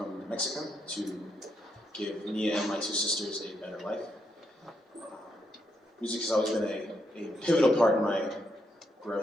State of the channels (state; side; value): normal; both; correlation 0.79